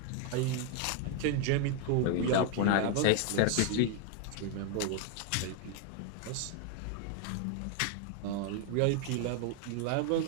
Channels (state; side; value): different; both; correlation 0.01